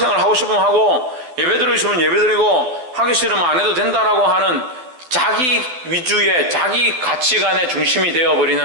하고 싶으면 하고 예배드리고 싶으면 예배드리고 하기 싫으면 안 해도 된다라고 하는 자기 위주의 자기 가치관의 중심이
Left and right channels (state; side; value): late; left; 12 ms